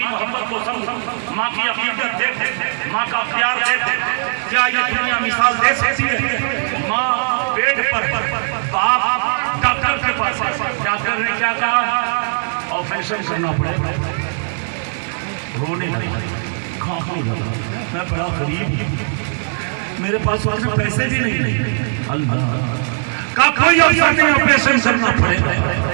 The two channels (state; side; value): silent; left; digital silence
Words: محبت کو سمجھو، ماں کی عقیدت دیکھو، ماں کا پیار دیکھو۔ کیا یہ دنیا مثال دے سکتی ہے؟ ماں بیڈ پر، باپ ڈاکٹر کے پاس، ڈاکٹر نے کیا کہا؟ آپریشن کرنا پڑے گا۔ رونے لگا، کھانکنے لگا، میں بڑا غریب ہوں، میرے پاس پیسے بھی نہیں۔ اللہ کا کوئی افسر نہیں، آپریشن کرنا پڑے گا۔